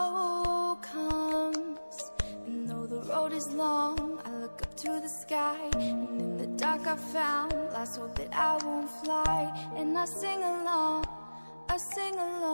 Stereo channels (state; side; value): inverted; both; correlation -1.00